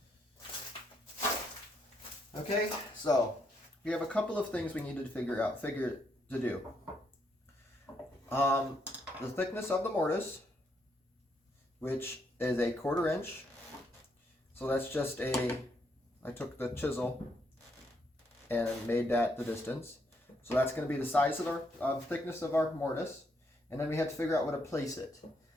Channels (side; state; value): both; normal; correlation 0.75